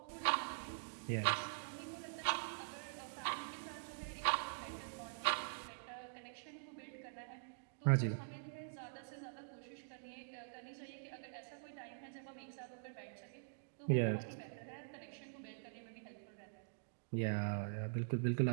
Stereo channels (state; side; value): silent; left; digital silence